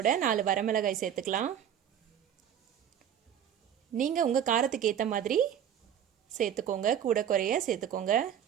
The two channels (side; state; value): left; quieter; 9.4 dB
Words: 4 வரமிளகாய் சேர்த்துக்கலாம். நீங்கள் உங்கள் காரத்துக்கு ஏற்ற மாதிரி சேர்த்துக்கோங்க, கூட குறைய சேர்த்துக்கோங்க.